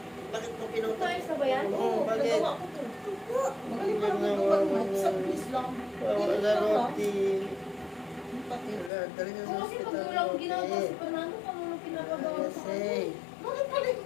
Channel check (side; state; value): right; drops out; at 8.9 s